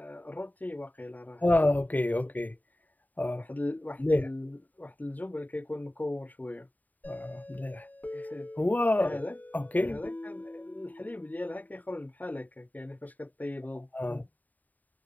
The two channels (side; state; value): right; late; 0.082 ms